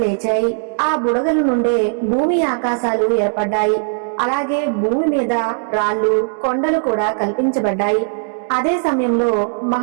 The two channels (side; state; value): left; silent; digital silence